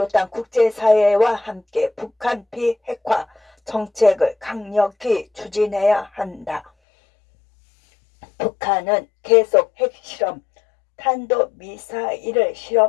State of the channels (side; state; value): right; drops out; at 6.7 s